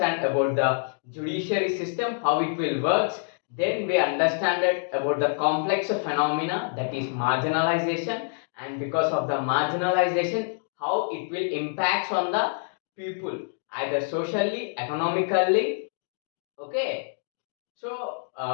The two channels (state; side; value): silent; right; digital silence